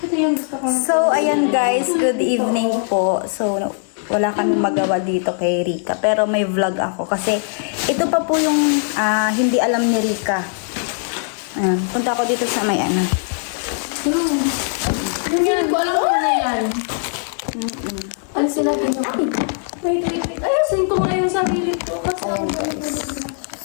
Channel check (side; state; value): right; silent; 56 dB below the other